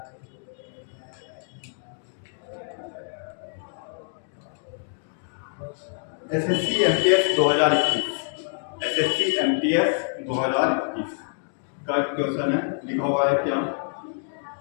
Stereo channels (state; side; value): silent; right; 61 dB below the other